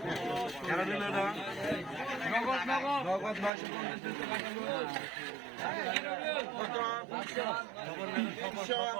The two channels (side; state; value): left; drops out; at 3.5 s